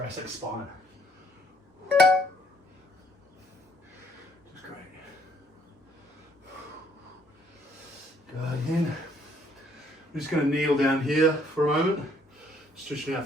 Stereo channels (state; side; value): normal; both; correlation 0.65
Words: spine. Just great. Good. Again. I'm just going to kneel down here for a moment, stretching